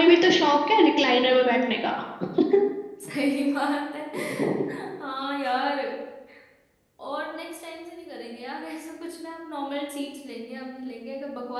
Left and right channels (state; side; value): identical; both; correlation 1.00